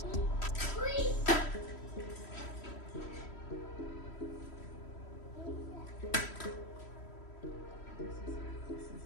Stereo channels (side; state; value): right; late; 3.1 ms